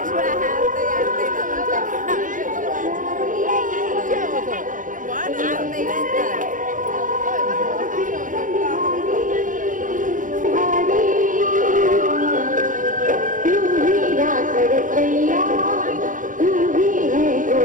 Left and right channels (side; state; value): left; late; 0.38 ms